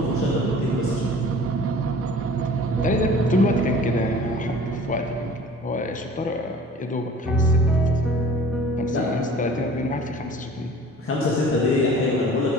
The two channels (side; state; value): both; normal; correlation 0.46